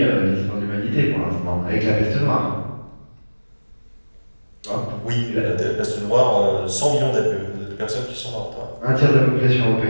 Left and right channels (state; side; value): inverted; both; correlation -1.00